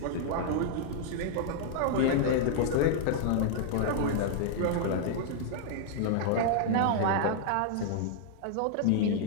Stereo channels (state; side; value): different; both; correlation -0.01